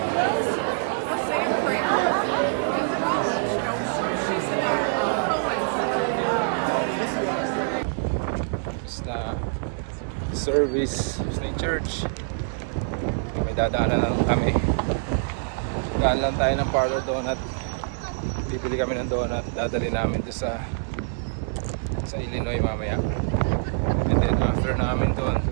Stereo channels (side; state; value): left; silent; digital silence